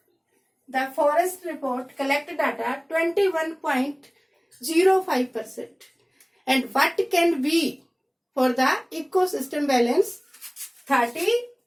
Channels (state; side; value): identical; both; correlation 1.00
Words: the forest report collected data 21.05%. And what can be for the ecosystem balance?